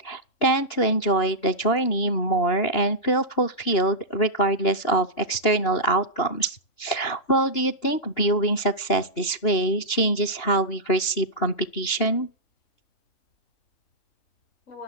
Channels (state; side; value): late; right; 2.9 ms